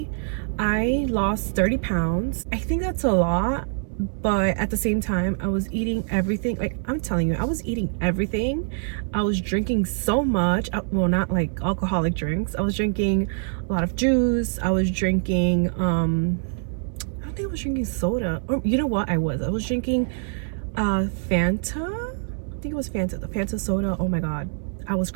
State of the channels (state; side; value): silent; left; 62 dB below the other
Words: I lost 30 pounds. I think that's a lot, but at the same time, I was eating everything. Like, I'm telling you, I was eating everything. I was drinking so much. Well, not like alcoholic drinks. I was drinking a lot of juice. I was drinking I don't think I was drinking soda. Or you know what? I was drinking Fanta. I think it was Fanta, the Fanta soda. Oh my god, I was